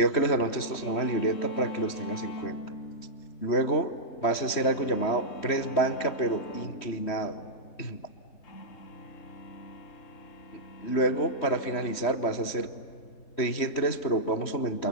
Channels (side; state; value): right; late; 3.1 ms